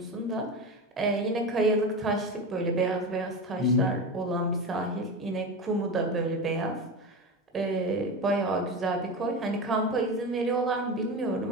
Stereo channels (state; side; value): normal; both; correlation 0.23